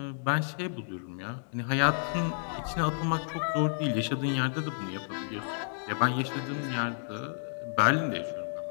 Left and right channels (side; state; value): right; silent; digital silence